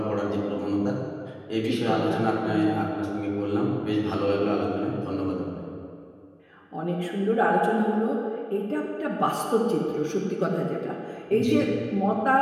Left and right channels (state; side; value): identical; both; correlation 1.00